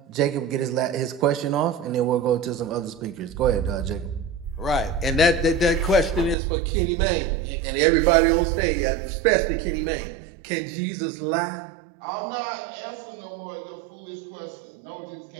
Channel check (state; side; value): drops out; left; at 6.4 s